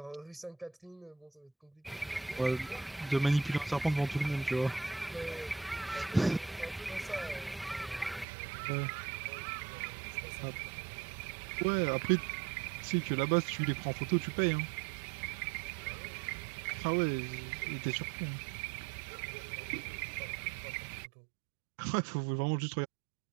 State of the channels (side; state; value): left; drops out; at 8.2 s